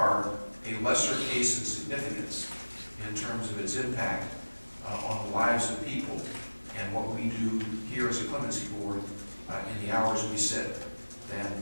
a lesser case in significance in terms of its impact on the lives of people and what we do here as a clemency board in the hours we sit than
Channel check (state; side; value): inverted; both; correlation -1.00